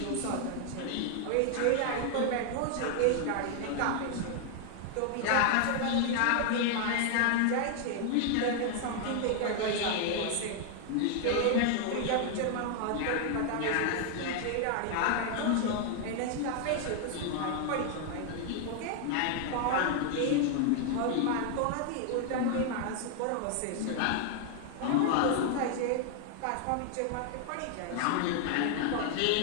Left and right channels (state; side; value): different; both; correlation 0.00